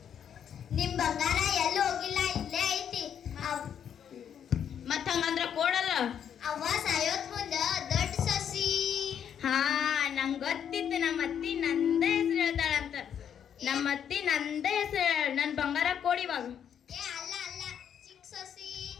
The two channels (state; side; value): quieter; right; 8.6 dB